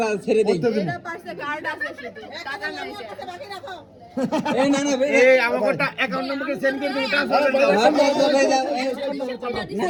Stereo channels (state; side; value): identical; both; correlation 1.00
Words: ছেড়ে দেই। এটা পাশে গার্ড আছে শুধু, টাকা নাই সে। বাকি রাখো। এই না না এই আমারটা অ্যাকাউন্ট নম্বরকে সেন্ড করে দিন, ট্রান্সফার করে দাও। না